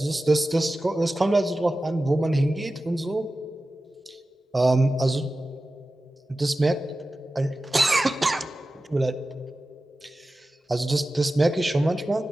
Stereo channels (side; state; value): both; normal; correlation 0.95